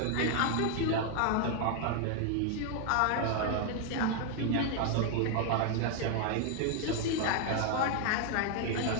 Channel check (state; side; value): different; both; correlation 0.00